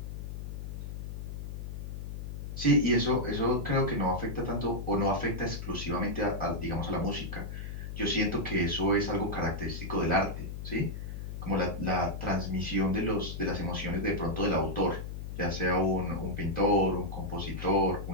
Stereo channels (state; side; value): noise; left; hum, 7 dB below the sound